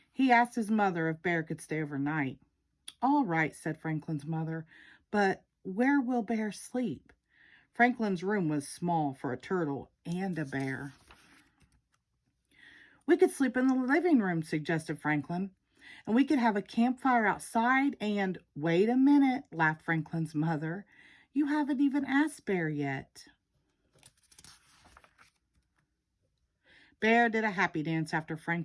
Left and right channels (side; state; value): both; identical; correlation 1.00